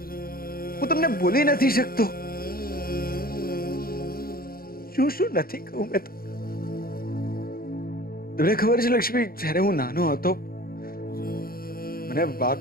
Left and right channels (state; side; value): late; right; 0.43 ms